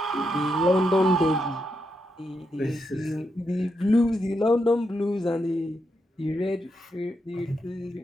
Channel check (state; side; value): normal; both; correlation 0.83